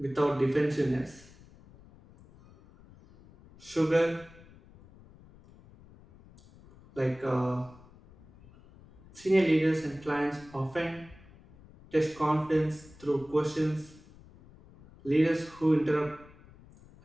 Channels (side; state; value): left; noise; rumble, 23 dB below the sound